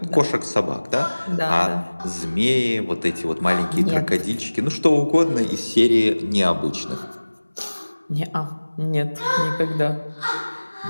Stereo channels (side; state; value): both; inverted; correlation -1.00